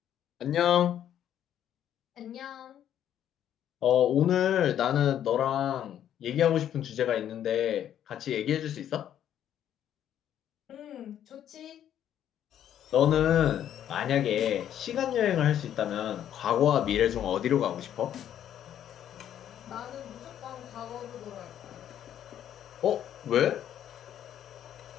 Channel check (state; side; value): quieter; right; 10.5 dB